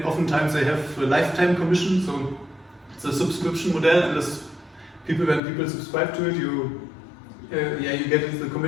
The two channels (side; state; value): right; drops out; at 5.4 s